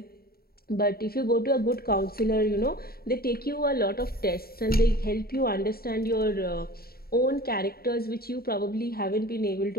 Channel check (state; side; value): late; right; 0.44 ms